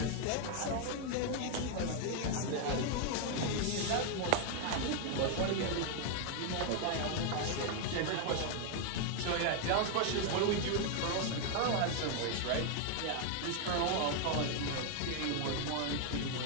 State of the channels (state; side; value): different; both; correlation 0.00